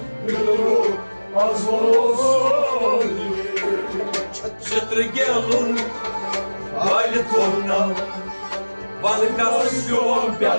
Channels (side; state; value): both; inverted; correlation -1.00